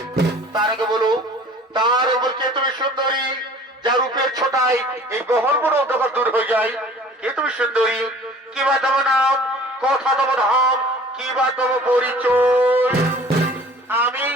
তার আগে বলো, তার উপর কে তুমি সুন্দরী, যার রূপের ছোটায় এই গহরগুলো অন্ধকার দূর হয়ে যায়? কে তুমি সুন্দরী? কি বা তব নাম, কথা তব ধাম, কি বা তব পরিচয়? আমি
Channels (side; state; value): both; normal; correlation 0.48